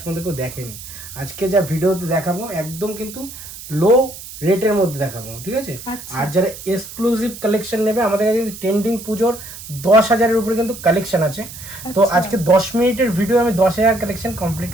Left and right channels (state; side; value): noise; right; hiss, 13 dB below the sound